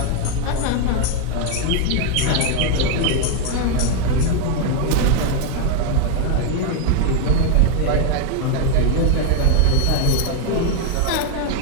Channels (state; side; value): different; both; correlation 0.01